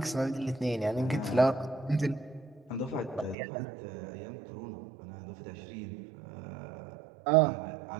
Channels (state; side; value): drops out; left; at 3.4 s